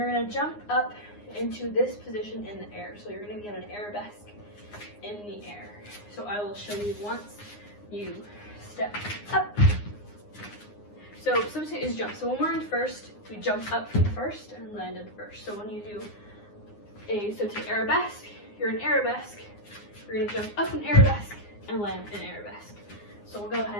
going to jump up into this position in the air. So you're going to be on an arabesque in the air. So I will show you once you step up. So sauté is jump. So when we're in first, we jump up from first and land in first. So when you do a sauté arabesque, you're in arabesque. You're going to jump up in arabesque and land in arabesque. So we'll go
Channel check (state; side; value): late; right; 9.7 ms